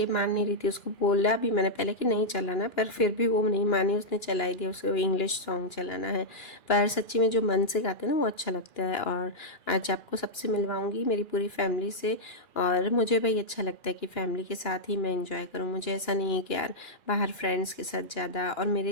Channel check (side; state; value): right; late; 2.9 ms